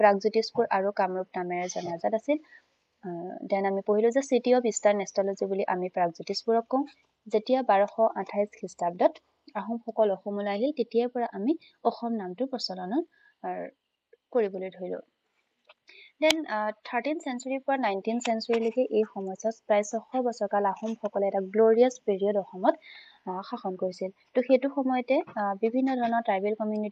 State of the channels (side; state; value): both; identical; correlation 1.00